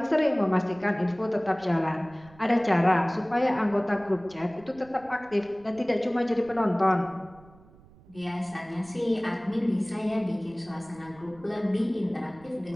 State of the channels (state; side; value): noise; right; rumble, 24 dB below the sound